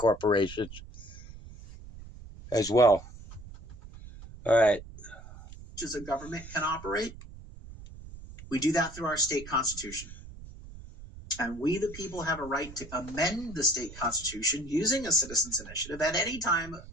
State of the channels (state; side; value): noise; right; rumble, 15 dB below the sound